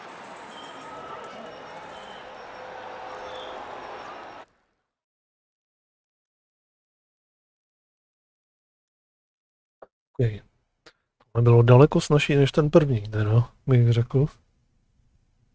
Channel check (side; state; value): both; identical; correlation 1.00